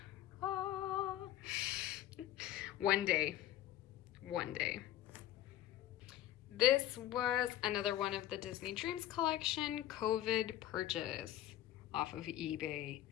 ah. One day. This was another one of the Disney Dreams collection COVID purchase off of eBay.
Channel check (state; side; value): quieter; right; 13.1 dB